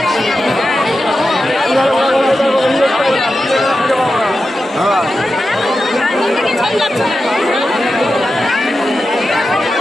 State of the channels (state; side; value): normal; both; correlation 0.91